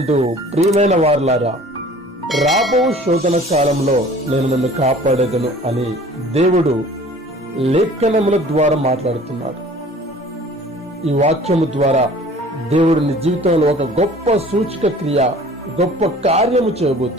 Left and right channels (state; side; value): normal; both; correlation 0.48